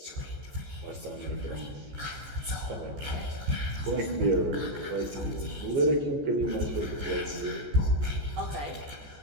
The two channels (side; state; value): left; late; 14 ms